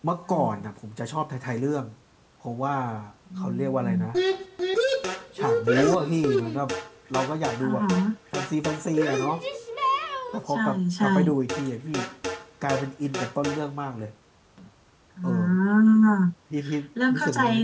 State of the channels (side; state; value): both; identical; correlation 1.00